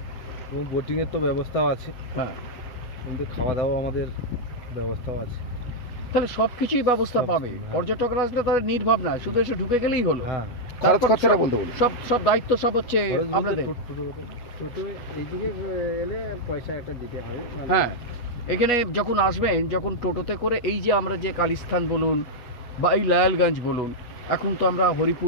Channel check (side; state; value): right; late; 8.2 ms